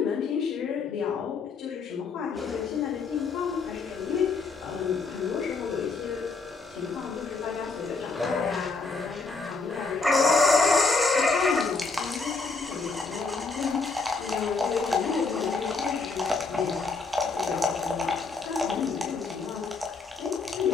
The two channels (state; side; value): quieter; right; 4.2 dB